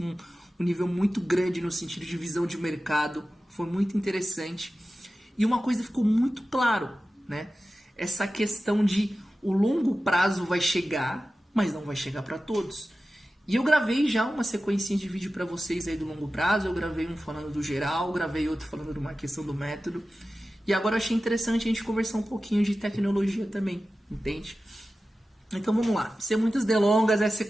um nível muito grande no sentido de visão de mercado, foi muito interessante. E uma coisa ficou muito claro, né? Essa questão de o longo prazo vai chegar, mas não vai chegar para todos. E eu gravei já uma sequência de vídeo para vocês aí do longo prazo. Eu gravei um falando do geral, gravei outro falando de uma questão do método. E agora eu achei interessante a gente conversar um pouquinho de tecnologia também, entende? Então vamos lá. Sem muitas delongas, essa é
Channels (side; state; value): both; normal; correlation 0.94